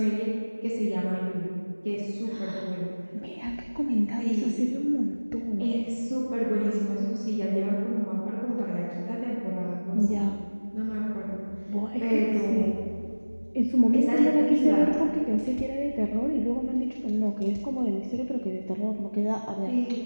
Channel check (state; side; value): inverted; both; correlation -1.00